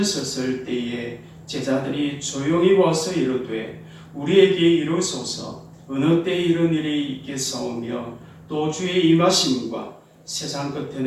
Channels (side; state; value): both; identical; correlation 1.00